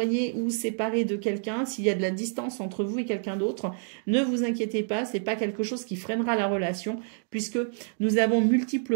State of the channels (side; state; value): left; silent; 60 dB below the other